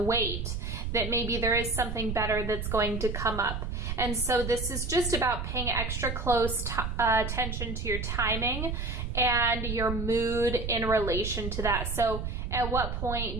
that maybe there is something better that's going to come up. And so this is just about paying extra close attention to your timing and your mood in relation to that. So at what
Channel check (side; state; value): right; noise; rumble, 4 dB below the sound